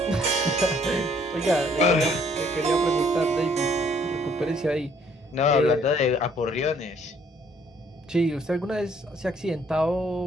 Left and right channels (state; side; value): normal; both; correlation 0.63